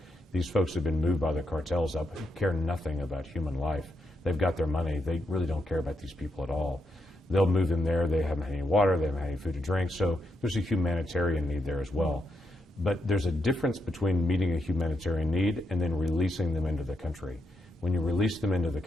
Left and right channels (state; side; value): normal; both; correlation 0.82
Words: These folks have been moved by the cartels up, care nothing about human life. They've got their money. They really don't care about these people at all. They'll move them there. They haven't had any water. They haven't had any food to drink. So there's a humanitarian need there as well. But there's a difference between meeting a humanitarian need and then releasing them into the country. When you release them into the